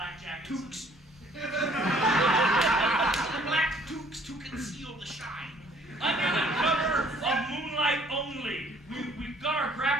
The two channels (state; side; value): normal; both; correlation 0.59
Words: jackets. Toques. Black toques to conceal the shine. Under the cover of moonlight only, we got our